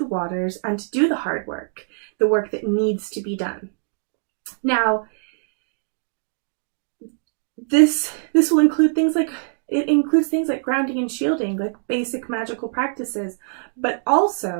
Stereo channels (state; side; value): silent; left; digital silence